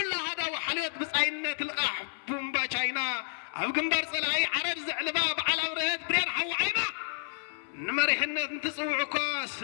هذا وحليت بصاينة القح بومبا شاينا أو قنبر صلاي عرب زعلبا على ورهت برين حوعينا نمريحنا نتصوعكا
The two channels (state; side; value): silent; right; 58 dB below the other